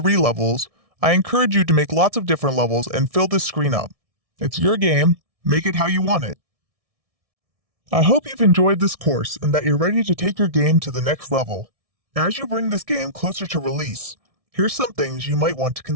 levels, I encourage you to make lots of different levels and fill this screen up. It's your game, make it how you want it. I hope you've enjoyed this course and that you're ready to take your game to the next level. As you bring this game closer to release, here's some things you might want to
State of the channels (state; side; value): late; left; 1.6 ms